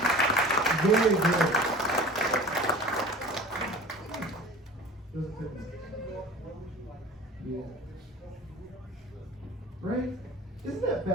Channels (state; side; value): normal; both; correlation 0.40